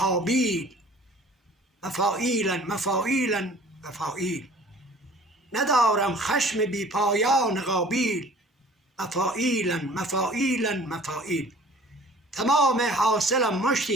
مفاعیلن مفاعیلن مفاعیل. ندارم خشم بی پایان قابیل، مفاعیلن مفاعیلن مفاعیل. تمام حاصلم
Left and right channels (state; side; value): normal; both; correlation 0.50